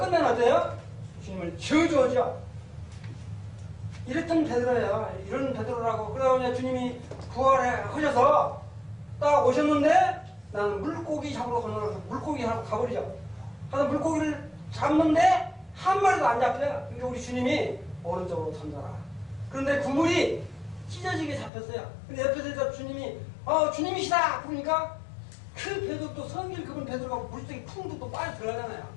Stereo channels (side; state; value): right; drops out; at 21.5 s